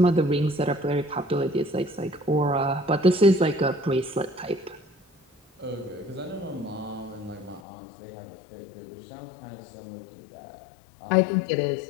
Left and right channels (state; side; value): drops out; right; at 7.6 s